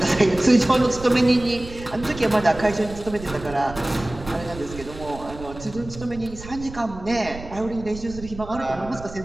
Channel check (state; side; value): noise; right; rumble, 14 dB below the sound